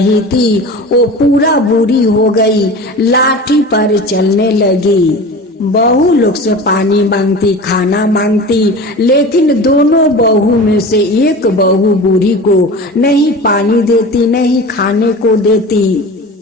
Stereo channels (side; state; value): both; normal; correlation 0.34